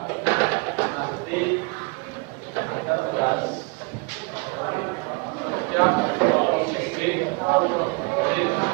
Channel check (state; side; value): quieter; left; 29.5 dB